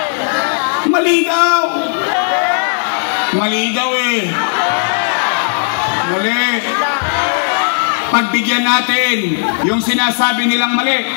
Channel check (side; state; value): right; silent; digital silence